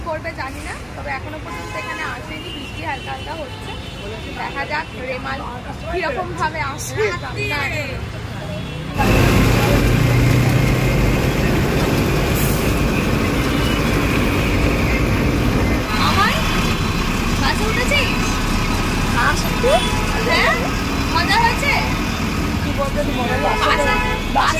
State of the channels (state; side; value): identical; both; correlation 1.00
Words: করবে জানি না, তবে এখনো পর্যন্ত এখানে আসেনি। বৃষ্টি হালকা হালকা হচ্ছে, দেখা যাক রেমাল কিরকম ভাবে আসে। বাসে উঠেছিস? হ্যাঁ মজা হয়েছে।